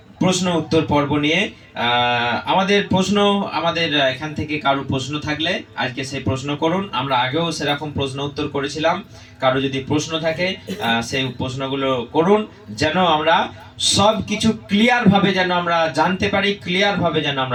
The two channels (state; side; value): identical; both; correlation 1.00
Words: প্রশ্ন উত্তর পর্ব নিয়ে। আমাদের এখান থেকে কারো প্রশ্ন থাকলে আজকে সেই প্রশ্ন করুন। আমরা আগেও সেরকম প্রশ্ন উত্তর করেছিলাম। কারো যদি প্রশ্ন থাকে সেই প্রশ্নগুলো করুন, যেন আমরা সব কিছু ক্লিয়ার ভাবে যেন আমরা জানতে পারি, ক্লিয়ার ভাবে যেন